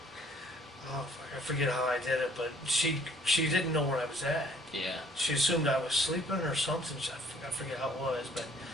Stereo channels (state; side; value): normal; both; correlation 0.59